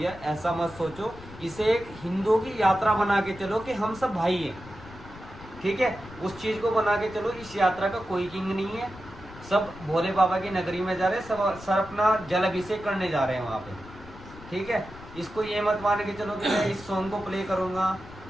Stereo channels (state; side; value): noise; left; rumble, 17 dB below the sound